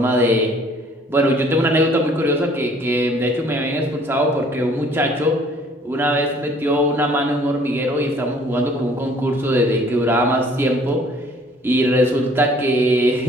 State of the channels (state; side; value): normal; both; correlation 0.57